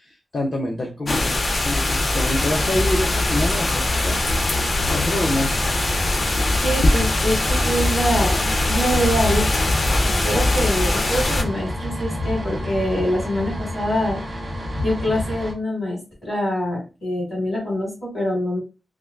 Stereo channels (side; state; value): both; normal; correlation 0.92